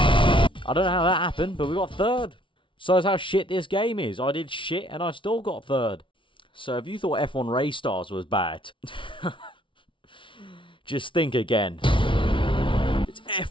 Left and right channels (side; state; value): right; late; 0.25 ms